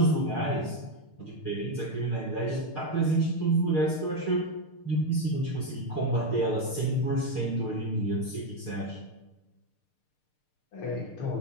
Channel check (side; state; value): right; late; 6.6 ms